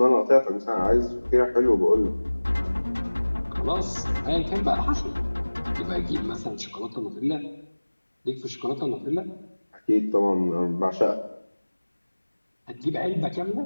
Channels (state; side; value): inverted; both; correlation -1.00